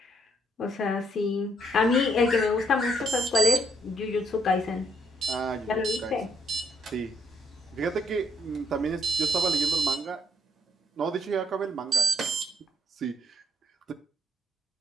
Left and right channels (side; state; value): both; normal; correlation 0.71